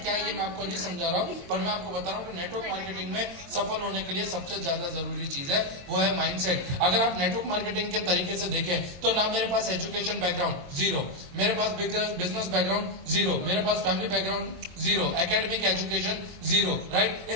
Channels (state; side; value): late; left; 22 ms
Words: क्या है ये मैं आपको नहीं समझा रहा हूँ, पर मैं आपको बता रहा हूँ कि नेटवर्क मार्केटिंग में सफल होने के लिए सबसे ज्यादा जरूरी चीज है वो है माइंडसेट। अगर आप नेटवर्क मार्केटिंग के तरीके से देखें तो ना मेरे पास एजुकेशन बैकग्राउंड जीरो, मेरे पास बिजनेस बैकग्राउंड जीरो, मेरे पास family background zero, academic education zero, right.